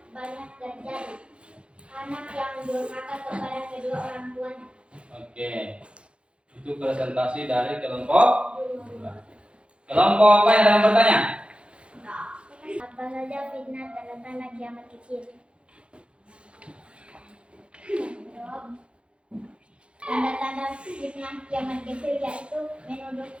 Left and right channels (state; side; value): late; left; 0.058 ms